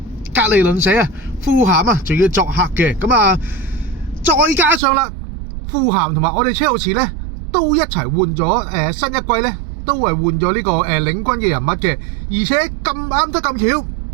格利倫社啊，富咸啊，仲要作客嘅。咁啊，再加上啦。富咸同埋我哋車路士咧都一齊換咗新一季咧都係換咗呢個領軍嘅人物嘅，而且咁啱得咁巧，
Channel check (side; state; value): left; drops out; at 4.8 s